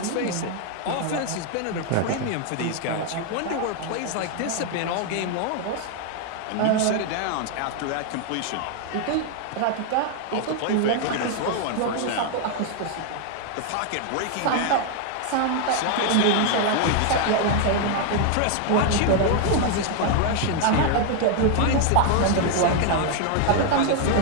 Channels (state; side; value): different; both; correlation 0.00